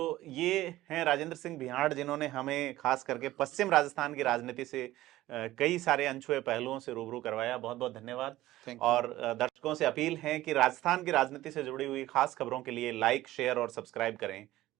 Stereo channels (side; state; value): left; quieter; 15.9 dB